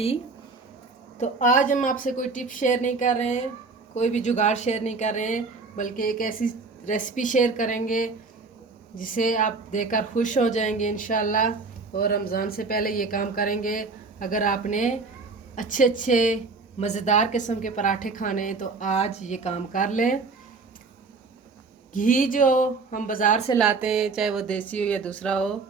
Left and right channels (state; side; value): quieter; left; 4.1 dB